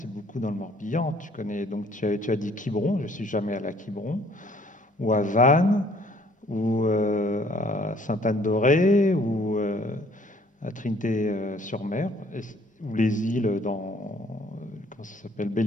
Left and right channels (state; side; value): normal; both; correlation 0.60